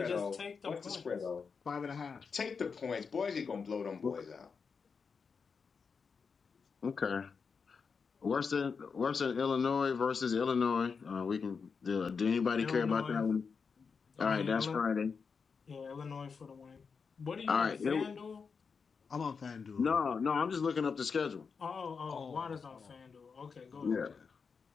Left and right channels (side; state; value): right; quieter; 5.5 dB